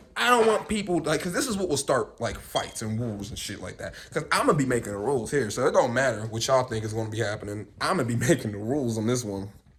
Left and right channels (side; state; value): both; identical; correlation 1.00